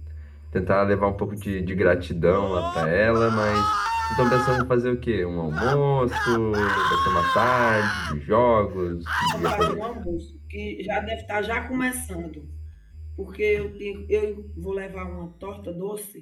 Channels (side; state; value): both; identical; correlation 1.00